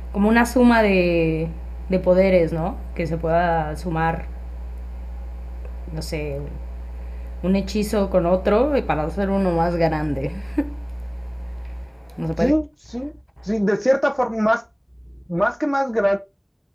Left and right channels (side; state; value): both; identical; correlation 1.00